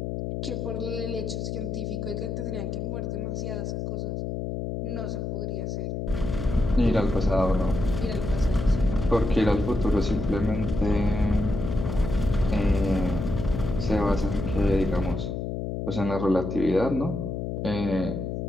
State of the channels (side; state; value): left; noise; hum, 3 dB below the sound